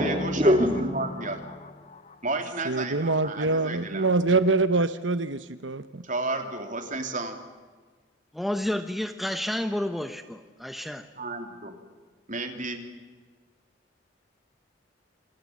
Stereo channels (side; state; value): both; normal; correlation 0.23